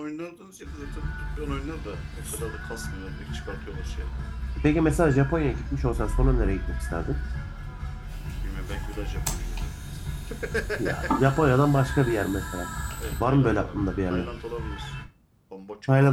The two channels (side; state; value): both; identical; correlation 1.00